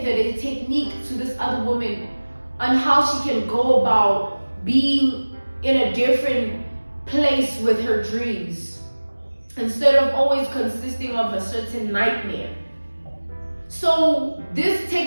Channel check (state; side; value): inverted; both; correlation -1.00